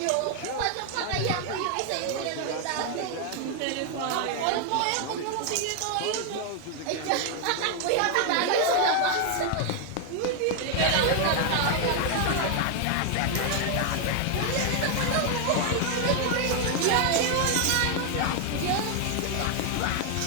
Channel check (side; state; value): both; different; correlation 0.00